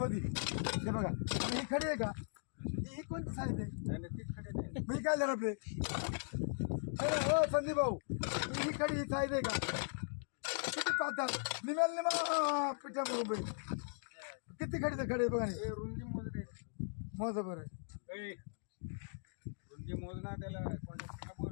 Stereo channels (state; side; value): silent; right; digital silence